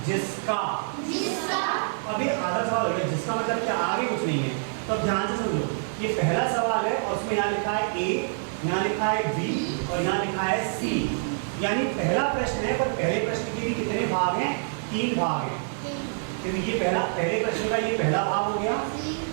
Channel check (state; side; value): silent; left; digital silence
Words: जिसका। अभी आधा सवाल हो गया, जिसका मतलब क्या, आगे कुछ नहीं है। तो अब ध्यान से समझो, ये पहला सवाल है और उसमें यहाँ लिखा है ए, यहाँ लिखा है बी और यहाँ लिखा है सी। यानी पहला प्रश्न है, पर पहले प्रश्न के भी कितने भाग हैं? 3 भाग हैं। तो ये पहले प्रश्न का ये पहला भाग हो गया,